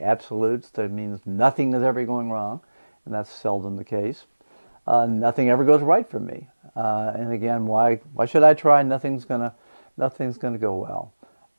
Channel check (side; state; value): both; inverted; correlation -1.00